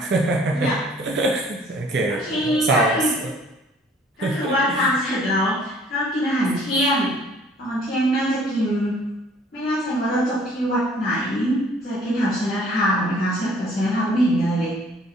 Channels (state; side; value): normal; both; correlation 0.56